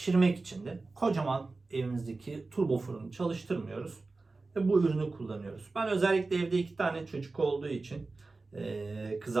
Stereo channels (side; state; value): left; quieter; 3.6 dB